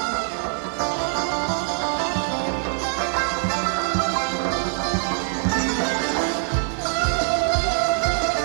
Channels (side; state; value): left; silent; digital silence